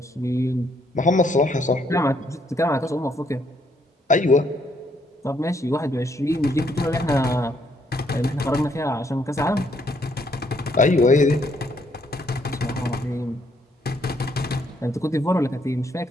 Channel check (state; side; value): normal; both; correlation 0.70